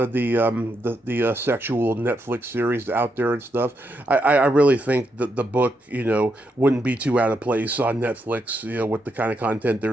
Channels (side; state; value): both; normal; correlation 0.81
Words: of the sexual Netflix series out there and stuff. I really think that the book wouldn't be too out of place on Netflix with the kind of content